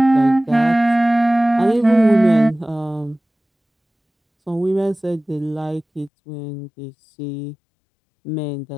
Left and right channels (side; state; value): right; drops out; at 6.1 s